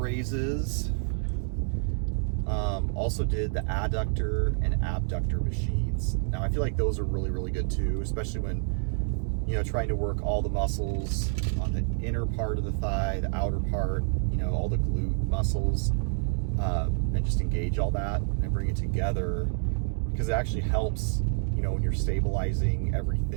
Also did the adductor and abductor machines. Now I feel like those are really, really good too, especially when, you know, trying to work all the muscles on the inner part of the thigh, the outer part, you know, all the glute muscles, and just engage all that and bring it together, because it actually helps, you know, when you're stabilizing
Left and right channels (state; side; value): silent; left; digital silence